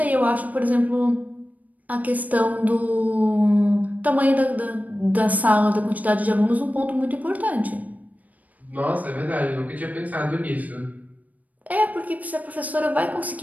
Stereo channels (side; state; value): left; late; 0.075 ms